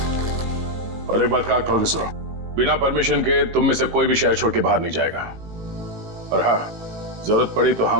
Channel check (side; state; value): left; late; 18 ms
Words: और एक बात का खोल के सुनो, बिना परमिशन के तुम में से कोई भी शहर छोड़ के बाहर नहीं जाएगा। और हाँ, जरूरत पड़ी तो